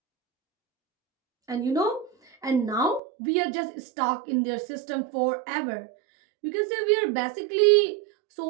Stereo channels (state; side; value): drops out; left; at 3.0 s